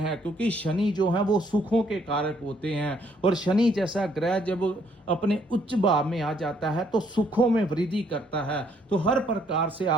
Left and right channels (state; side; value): normal; both; correlation 0.68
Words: क्योंकि शनि जो है वो सुखों के कारक होते हैं, और शनि जैसा ग्रह जब अपने उच्च भाव में आ जाता है तो सुखों में वृद्धि करता है। तो हर प्रकार से